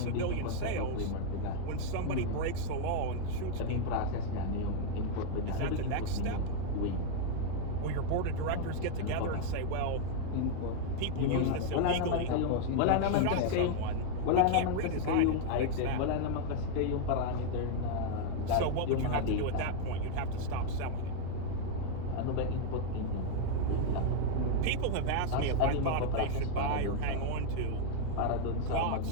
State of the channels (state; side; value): different; both; correlation 0.00